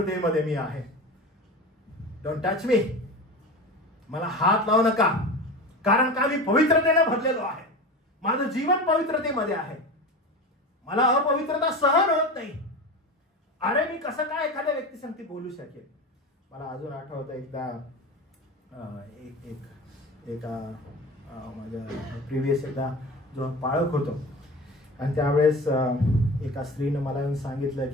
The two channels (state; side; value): normal; both; correlation 0.30